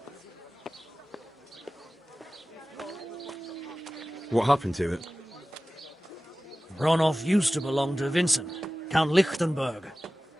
What happened to it? Ronov used to belong to Vincent, Count Lichtenberg.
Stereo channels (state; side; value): normal; both; correlation 0.96